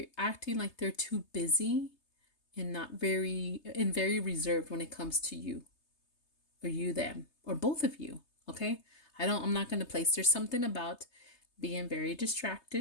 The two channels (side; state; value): right; late; 3.3 ms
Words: acting like they're too busy and very reserved when it comes to you, or you, them, or both of you. Okay. I'm not going to place. There's something about being very